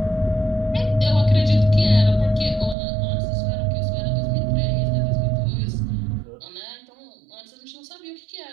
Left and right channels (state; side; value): drops out; left; at 2.8 s